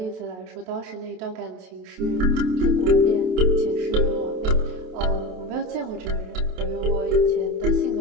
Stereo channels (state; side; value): late; left; 28 ms